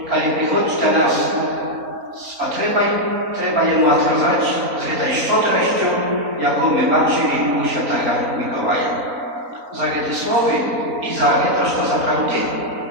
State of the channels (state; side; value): late; left; 3.9 ms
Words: kiedy przychodzi do nas z potrzebą, trzeba jemu odkazać z tej szczodrością, jaką my patrzyli u Świętego Mikołaja. Za te słowy i za to, że naprawdę